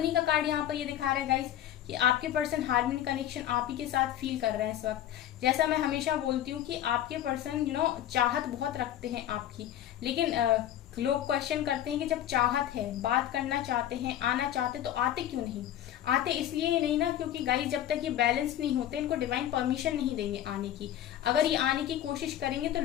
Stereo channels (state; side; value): quieter; right; 11.8 dB